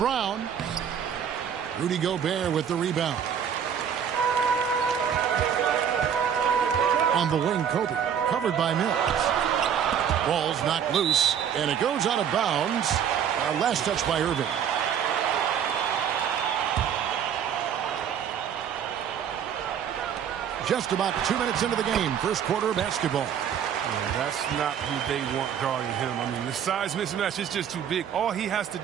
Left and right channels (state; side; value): quieter; left; 8.4 dB